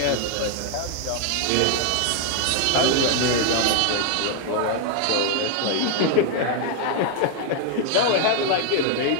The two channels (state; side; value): different; both; correlation 0.00